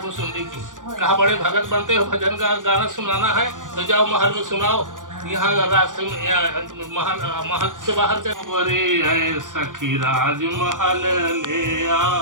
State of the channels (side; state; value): left; late; 0.88 ms